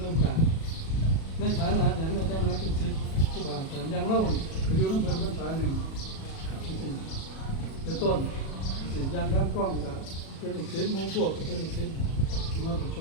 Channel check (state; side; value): late; right; 37 ms